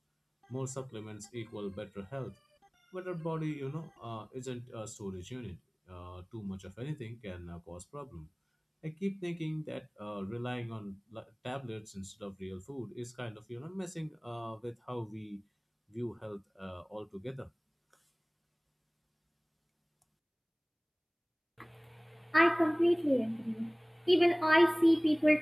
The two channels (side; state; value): both; identical; correlation 1.00